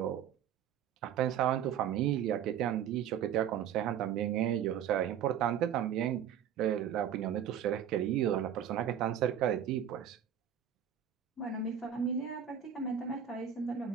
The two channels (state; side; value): quieter; left; 9.3 dB